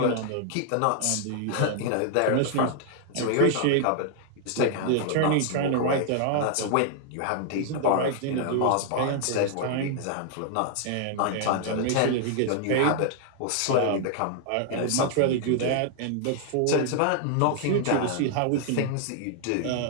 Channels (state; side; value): different; both; correlation 0.00